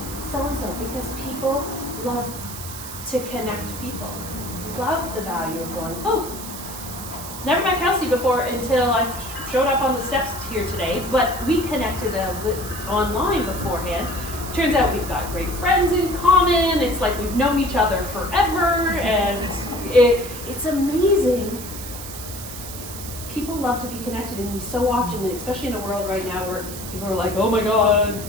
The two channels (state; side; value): noise; right; hiss, 11 dB below the sound